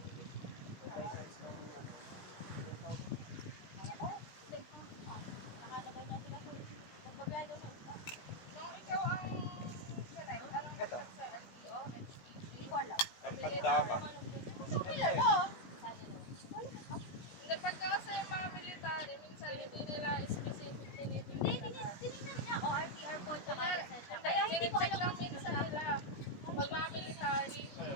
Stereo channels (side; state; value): right; late; 16 ms